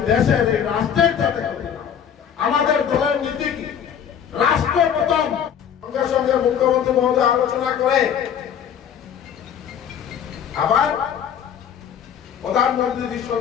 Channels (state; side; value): quieter; right; 8.5 dB